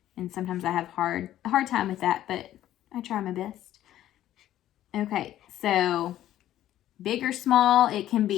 And sometimes I have a hard time with that, but I try my best. Okay, so big or small, it can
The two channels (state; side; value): quieter; right; 12.8 dB